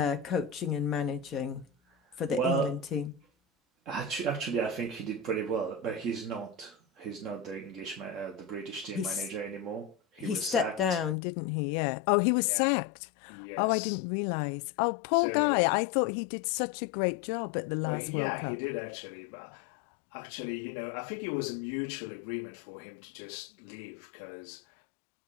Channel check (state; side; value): drops out; right; at 11.2 s